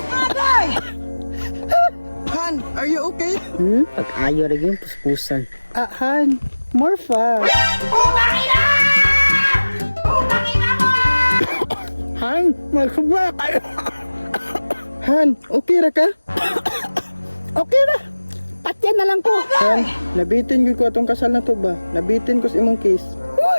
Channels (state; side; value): inverted; both; correlation -1.00